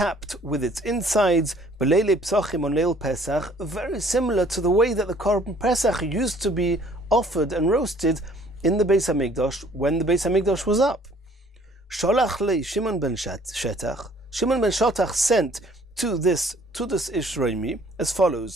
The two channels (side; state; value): both; normal; correlation 0.57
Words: with its insides, b'leilei psachim on Leil Pesach, very similar to the way that the Korban Pesach used to be offered and roasted in the Beis Hamikdash when the Beis Hamikdash was up. Sholach lei Shimon ben Shetach. Shimon ben Shetach sent to this Tudus Ishroimi as